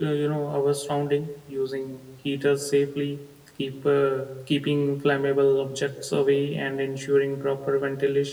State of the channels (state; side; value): identical; both; correlation 1.00